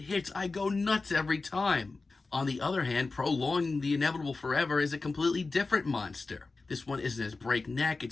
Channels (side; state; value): right; quieter; 3.8 dB